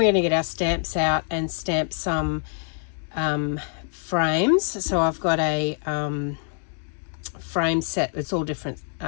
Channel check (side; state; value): right; silent; digital silence